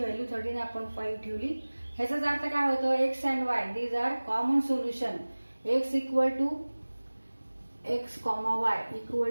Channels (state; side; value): inverted; both; correlation -1.00